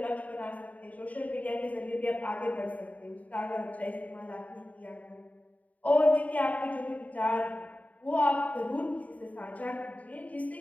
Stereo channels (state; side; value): late; right; 0.071 ms